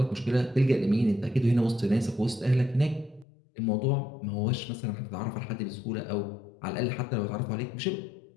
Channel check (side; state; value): right; drops out; at 3.2 s